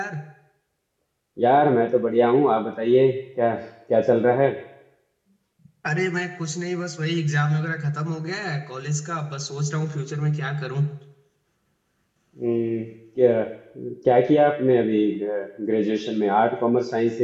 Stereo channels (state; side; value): identical; both; correlation 1.00